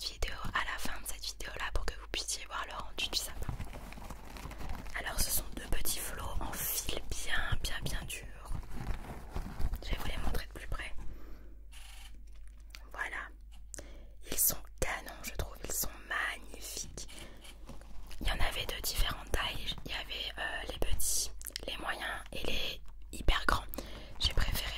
vidéo à la fin de cette vidéo là pour que vous puissiez voir le rendu du sapin. Alors ce sont deux petits flots en fil bien dur. Je vais vous les montrer de plus près. Voilà, ils sont canons, je trouve, ils sont magnifiques. Il y en avait de différentes tailles, il y avait les petits, les moyens et les hyper grands. J'ai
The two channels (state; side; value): identical; both; correlation 1.00